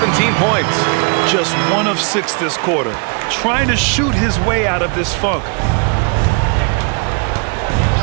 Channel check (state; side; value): quieter; left; 35.9 dB